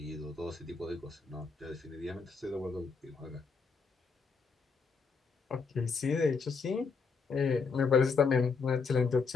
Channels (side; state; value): right; quieter; 5.0 dB